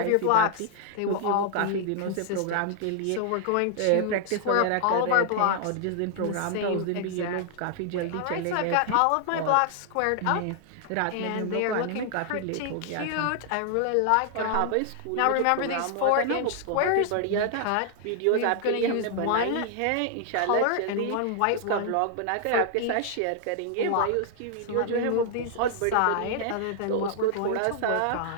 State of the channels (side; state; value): both; different; correlation 0.00